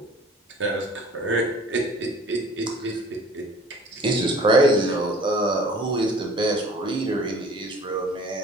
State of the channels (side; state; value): both; normal; correlation 0.49